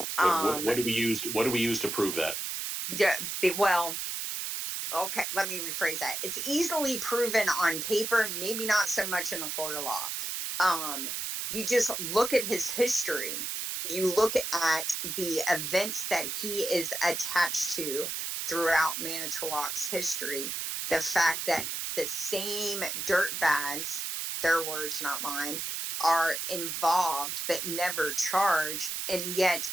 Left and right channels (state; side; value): noise; right; hiss, 3 dB below the sound